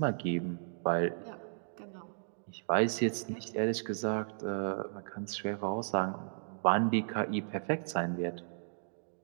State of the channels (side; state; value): left; silent; digital silence